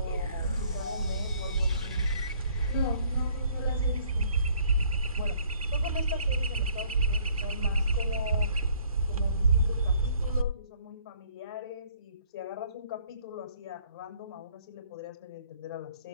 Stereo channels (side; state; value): both; inverted; correlation -0.61